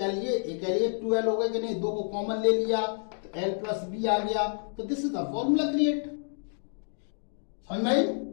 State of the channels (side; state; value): right; silent; digital silence